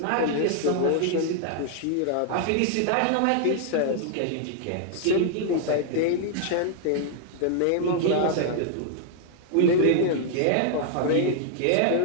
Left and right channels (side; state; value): both; different; correlation 0.00